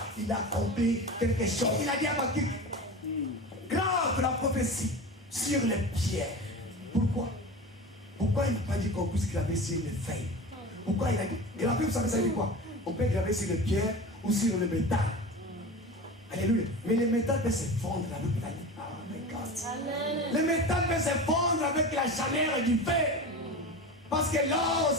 il a accompli quelque chose. Il a dit à Habakkuk, grave la prophétie sur les pierres. Pourquoi? Pourquoi il n'a pas dit qu'on puisse graver sur les feuilles? Pourquoi il a dit? Et la Bible, vous savez, ça dit quoi? On peut graver sur les pierres ou sur le métal. Alléluia. Mais le métal peut se fondre avec la lumière. Oh my God. Le métal peut se fondre avec la chaleur du feu. Parce que l'or,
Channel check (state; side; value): normal; both; correlation 0.31